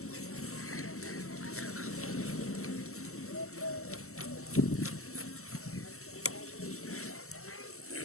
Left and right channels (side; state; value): right; late; 0.63 ms